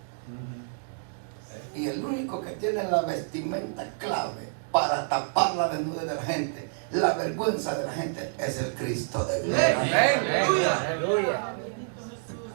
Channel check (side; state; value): left; silent; digital silence